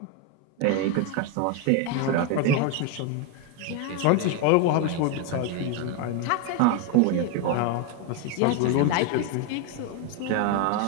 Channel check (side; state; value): both; different; correlation 0.01